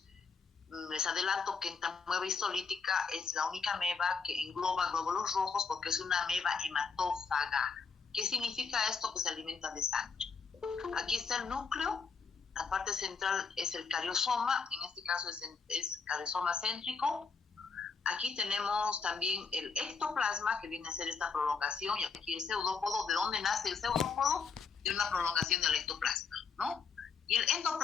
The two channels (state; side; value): quieter; right; 5.3 dB